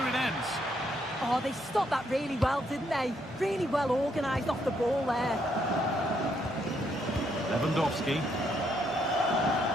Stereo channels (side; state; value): both; normal; correlation 0.74